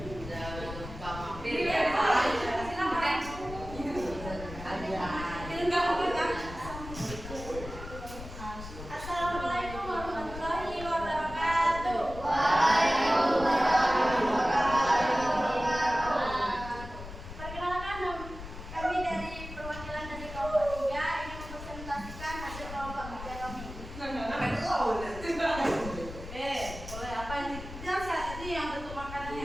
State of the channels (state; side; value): noise; left; rumble, 11 dB below the sound